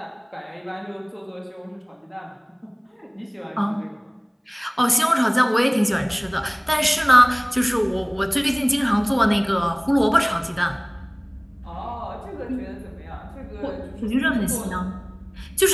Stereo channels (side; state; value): both; identical; correlation 1.00